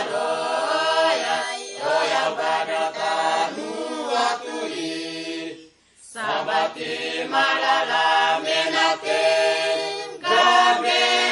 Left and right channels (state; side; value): identical; both; correlation 1.00